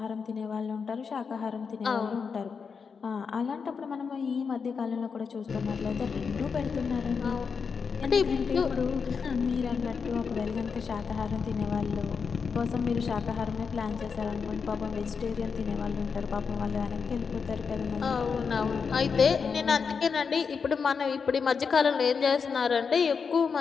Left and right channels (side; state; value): right; quieter; 5.7 dB